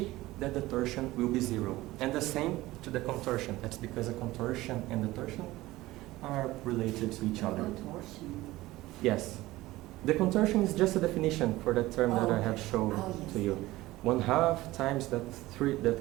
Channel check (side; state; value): left; quieter; 18.0 dB